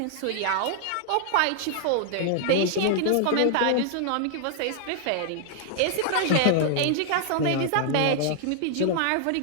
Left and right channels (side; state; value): both; different; correlation 0.00